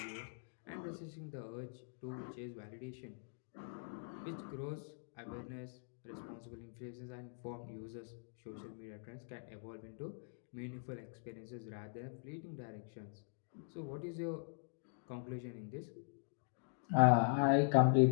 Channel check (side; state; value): right; silent; digital silence